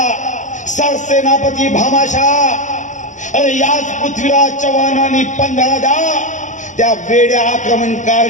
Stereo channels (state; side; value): late; right; 0.36 ms